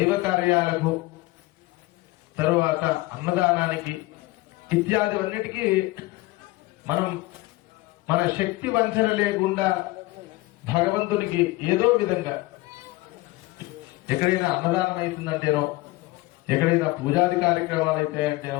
కార్యాలకు తరువాత అన్నదానానికి ఇత్యాదివన్నిటికీ మనం మన శక్తి వంచన లేకుండా భగవంతునికి ఏదో విధంగా ఎక్కడైనా అన్నదానం అవుతుందంటేనో ఎక్కడైనా పూజాది కార్యక్రమాలు అయితే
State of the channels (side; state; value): right; quieter; 20.2 dB